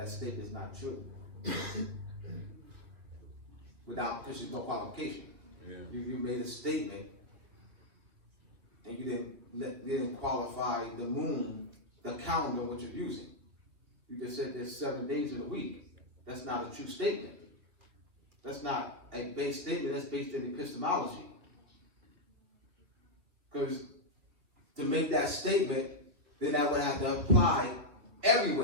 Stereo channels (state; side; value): late; left; 3.0 ms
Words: statement is not true. Because there's no qualification. Yeah. You made a statement and you didn't qualify the moon, the calendar which you're using. You just said there's 7 days in a week. that's not a true statement. That's not a base statement, that's based in epistemology. Because to make that statement, then that would have to apply